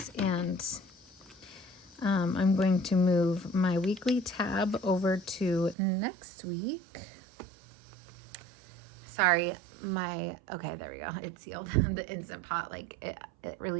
and I'm going to move my weekly tab over to next week. Sorry, okay, there we go. It sealed. The Instant Pot, like it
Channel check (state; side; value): drops out; left; at 5.8 s